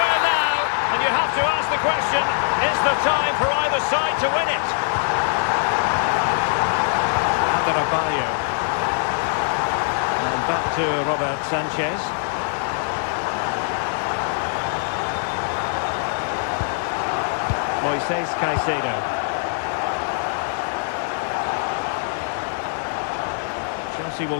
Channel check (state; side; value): silent; right; 61 dB below the other